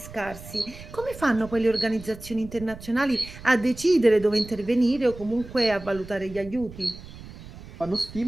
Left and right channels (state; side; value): noise; right; rumble, 16 dB below the sound